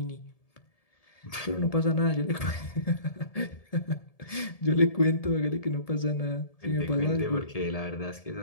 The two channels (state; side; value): late; right; 1.7 ms